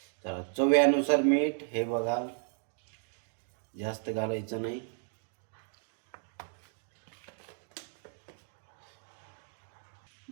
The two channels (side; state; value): left; silent; digital silence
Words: तर चव्यानुसार मीठ हे बघा, जास्त घालायचं नाही.